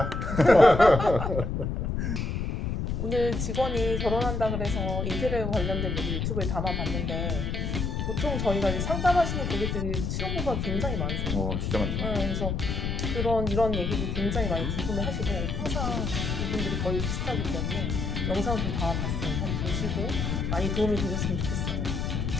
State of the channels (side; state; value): left; noise; rumble, 1 dB below the sound